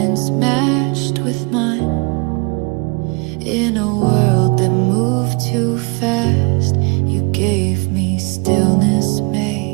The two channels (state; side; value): quieter; left; 30.6 dB